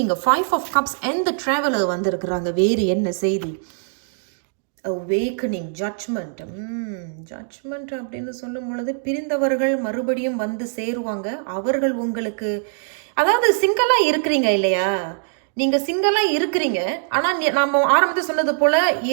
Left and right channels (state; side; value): silent; left; digital silence